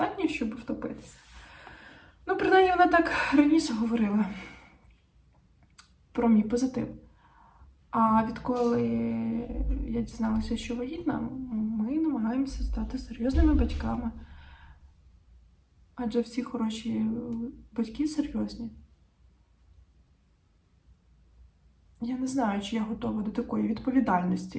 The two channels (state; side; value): identical; both; correlation 1.00